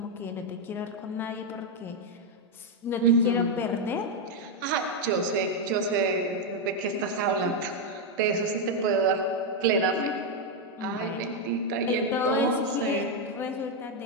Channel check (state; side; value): normal; both; correlation 0.02